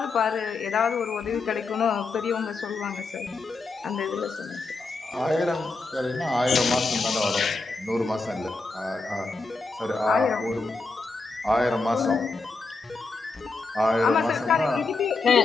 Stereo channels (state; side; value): quieter; right; 3.8 dB